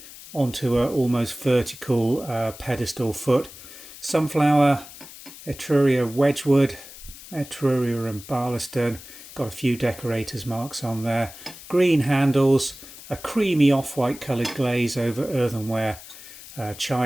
onto a almost vertical pedestal foot. Sunflower, Etruria, Wedgwood, Etruria and Barlaston. Got a few decorators marks on there. Green handles, a creamy off-white coloured glaze over earthenware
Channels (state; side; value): noise; left; hiss, 17 dB below the sound